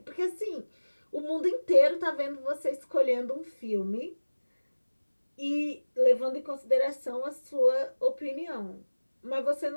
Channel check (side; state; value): both; inverted; correlation -1.00